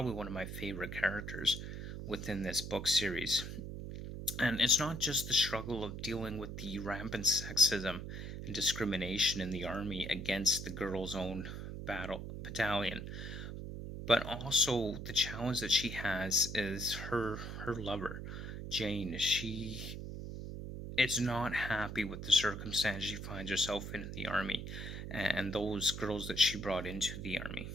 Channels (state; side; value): noise; right; hum, 7 dB below the sound